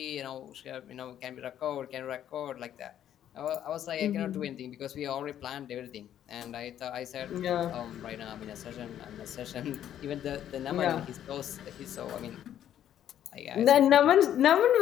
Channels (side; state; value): right; quieter; 10.7 dB